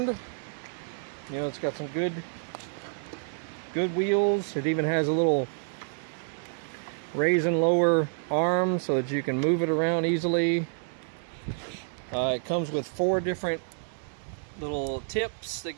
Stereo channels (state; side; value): silent; left; 59 dB below the other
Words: It's got some good wheels. It even has a little raise and lower arm so that you can move it around easily. It comes with 4 different little tips that